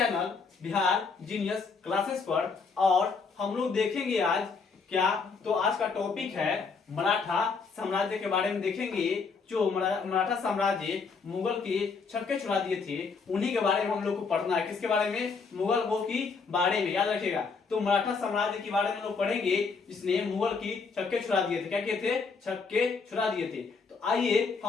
बिहार जीनियस क्लासेस पर। और हम लोग देखेंगे आज क्या, तो आज का टॉपिक है मराठा साम्राज्य के बारे में देखेंगे। जो मराठा साम्राज्य मुगल के छक्के छुड़ा दिए थे, उन्हीं के बारे में हम लोग को पढ़ना है। किसके बारे में? मुगल के बारे में, याद रखिएगा। तो मराठा साम्राज्य के बारे में लोग पढ़ेंगे जिसने मुगल की छक्के छुड़ा दिए थे। क्या किए थे? छक्के छुड़ा दिए थे। तो आइए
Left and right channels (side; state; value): right; quieter; 4.9 dB